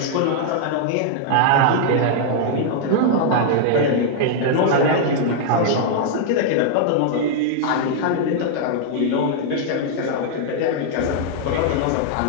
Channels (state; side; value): different; both; correlation 0.00